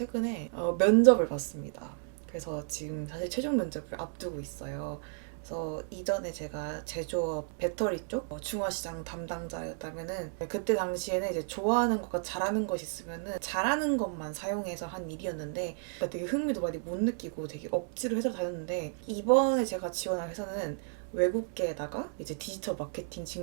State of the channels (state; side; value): silent; left; digital silence